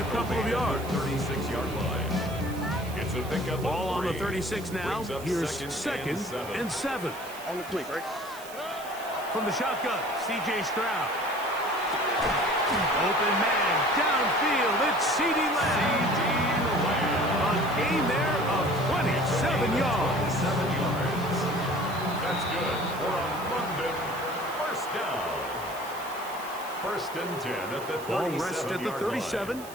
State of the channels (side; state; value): right; noise; hiss, 16 dB below the sound